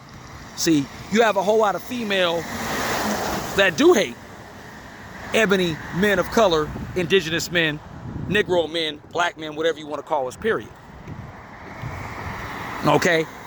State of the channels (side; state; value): both; identical; correlation 1.00